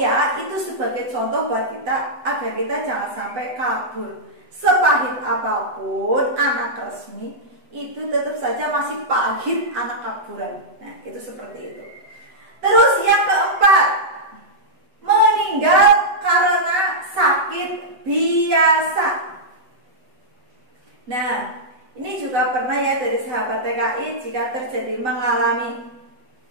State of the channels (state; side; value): late; left; 7.9 ms